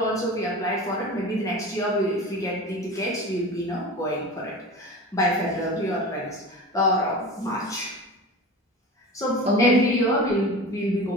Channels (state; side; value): normal; both; correlation 0.33